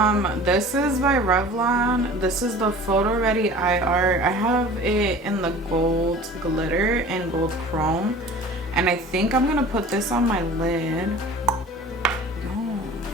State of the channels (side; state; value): both; normal; correlation 0.42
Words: This is by Revlon. This is the PhotoReady Eye Art. I have it in the gold glitter and gold chrome, and I think I'm gonna put this on my lid.